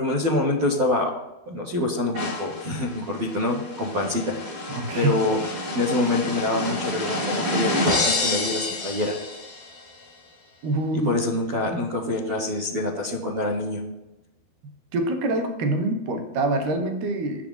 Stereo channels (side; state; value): left; late; 12 ms